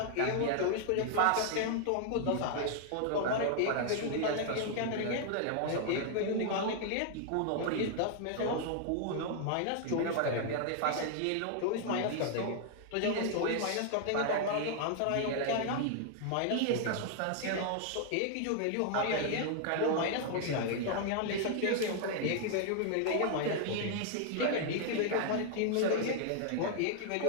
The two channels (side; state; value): both; different; correlation 0.00